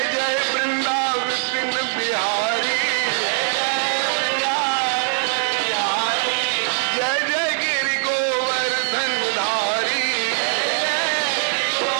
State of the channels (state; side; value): silent; left; 65 dB below the other